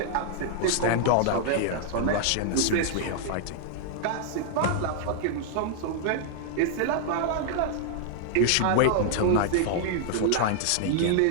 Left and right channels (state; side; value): different; both; correlation 0.00